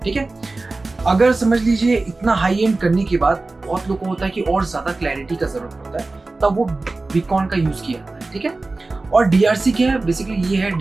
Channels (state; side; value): quieter; left; 3.3 dB